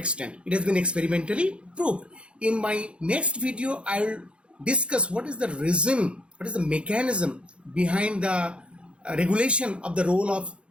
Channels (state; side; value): late; left; 0.058 ms